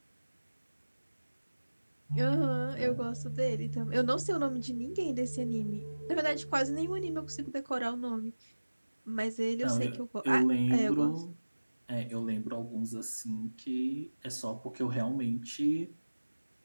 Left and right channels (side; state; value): both; inverted; correlation -1.00